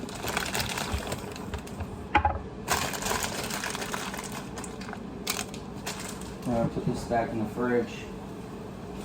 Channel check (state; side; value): identical; both; correlation 1.00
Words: I'm gonna put this back in the fridge.